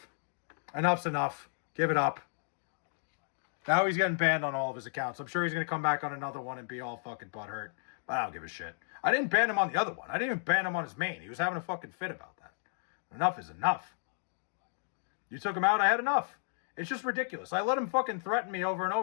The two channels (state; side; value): silent; right; digital silence